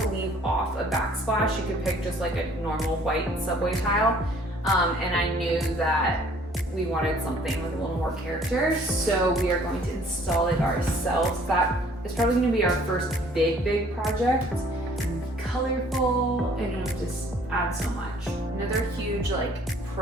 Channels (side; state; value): both; normal; correlation 0.57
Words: leave off a backsplash. You could pick just like a normal white subway tile. And I knew that we wanted something with a little more character, so we are going to install it ourselves. That is probably gonna be our first big project. Colorful, and it'll just add so much. Another huge like